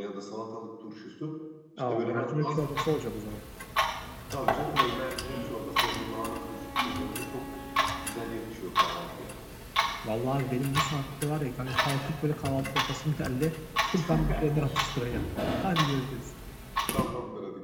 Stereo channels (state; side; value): identical; both; correlation 1.00